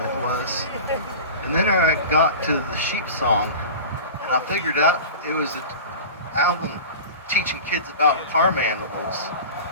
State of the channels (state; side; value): inverted; both; correlation -0.34